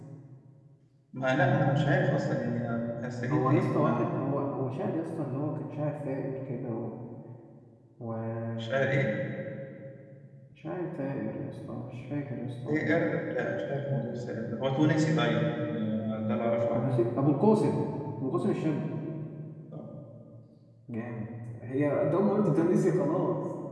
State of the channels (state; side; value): identical; both; correlation 1.00